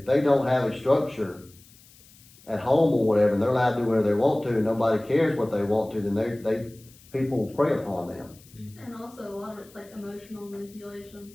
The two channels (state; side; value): noise; left; hiss, 25 dB below the sound